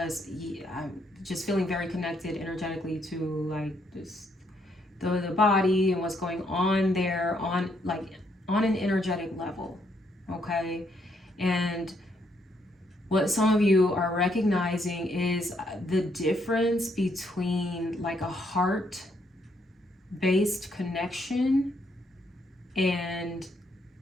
I'm just feeling very connected energetically to, like, this, the body and what's going on there on an energetic level. Okay. And what some of you are recognizing is the difference between like a heart-based connection and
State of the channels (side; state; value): both; normal; correlation 0.73